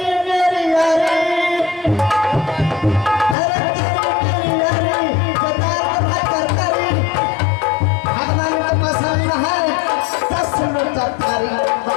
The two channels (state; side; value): drops out; right; at 3.4 s